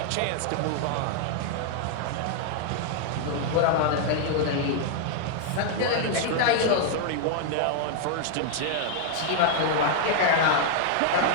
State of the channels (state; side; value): different; both; correlation -0.01